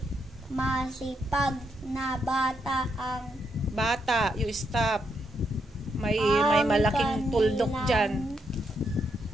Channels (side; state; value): both; normal; correlation 0.79